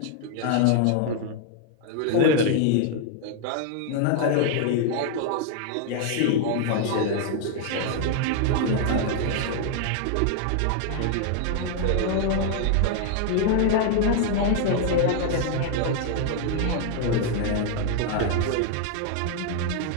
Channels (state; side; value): different; both; correlation 0.00